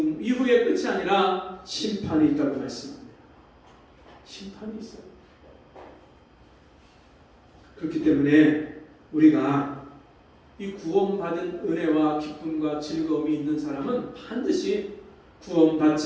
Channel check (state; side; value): identical; both; correlation 1.00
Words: 이후의 끝이 아니라 심판이 있다고 말씀합니다. 심판이 있어요. 그렇기 때문에 우리가 이 구원받은 은혜와 기쁨과 즐거움이 있는 사람은 반드시